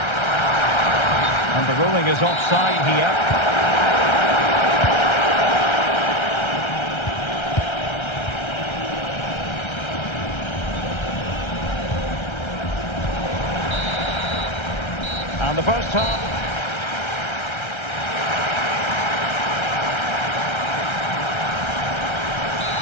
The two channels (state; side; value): late; right; 1.3 ms